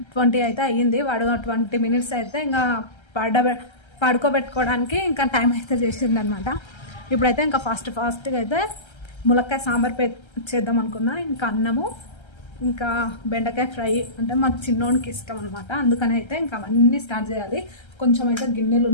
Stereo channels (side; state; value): right; late; 1.3 ms